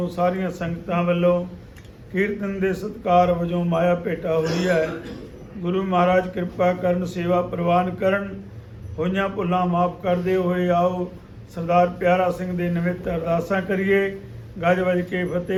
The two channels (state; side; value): identical; both; correlation 1.00